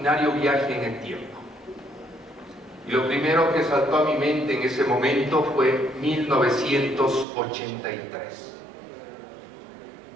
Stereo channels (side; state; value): left; drops out; at 7.2 s